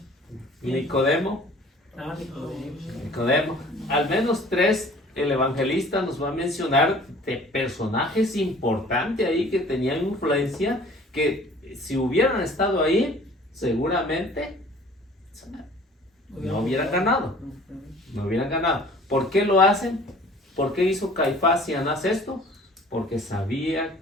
Nicodemo. Nicodemo. Al menos 3 el evangelista nos va a mencionar de personajes importantes ahí que tenían influencia, que si hubieran estado ahí, seguramente no hubieran ganado. No hubieran ganado. ¿Por qué lo hacen? ¿Por qué hizo Caifás y Anás esto? Porque sabía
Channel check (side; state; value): both; normal; correlation 0.50